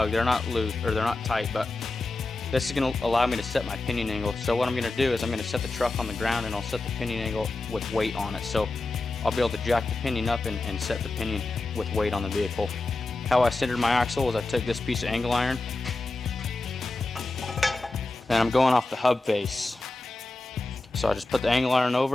they're not loose, or they're not tight, but this is gonna allow me to set my pinion angle. So what I'm gonna do is I'm gonna set the truck on the ground, and I'll set the pinion angle with weight on it. So I'll be able to jack the pinion up and set the pinion with weight on the vehicle. How I centered my axle was I took this piece of angle iron, and I'm going off the hub face. So I just put the angle iron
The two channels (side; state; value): right; quieter; 3.1 dB